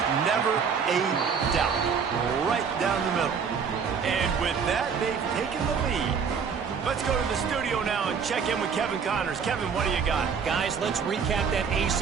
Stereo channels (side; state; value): left; quieter; 6.3 dB